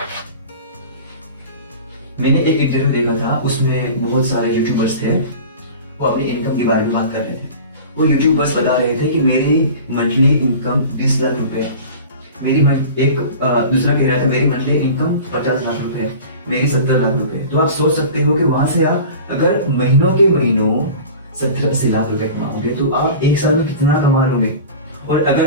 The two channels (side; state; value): both; inverted; correlation -0.37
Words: मैंने एक इंटरव्यू देखा था, उसमें बहुत सारे यूट्यूबर्स थे, वो अपनी इनकम के बारे में बात कर रहे थे। वो यूट्यूबर्स बता रहे थे कि मेरी मंथली इनकम 20 लाख रुपए, दूसरा कह रहा था मेरी मंथली इनकम 50 लाख रुपए, मेरी 70 लाख रुपए। तो आप सोच सकते हो कि वहां से आप अगर महीनों के महीनों 70-80 लाख रुपए कमाओगे तो आप 1 साल में कितना कमा लोगे। और